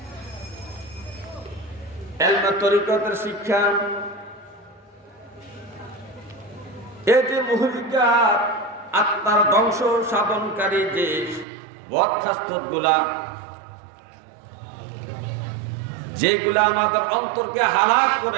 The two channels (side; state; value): left; drops out; at 11.5 s